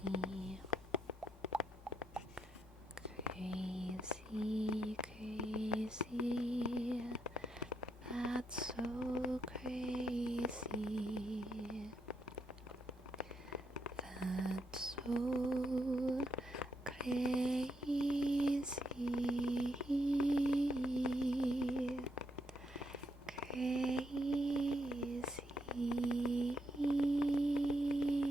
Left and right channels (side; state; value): both; normal; correlation 0.78